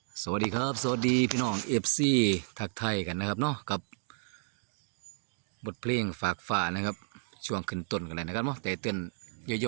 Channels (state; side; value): silent; left; digital silence